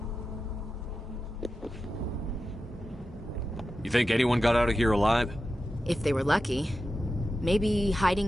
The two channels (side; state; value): both; normal; correlation 0.91